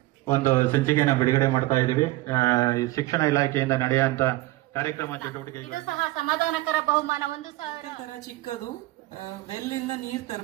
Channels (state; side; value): quieter; left; 18.4 dB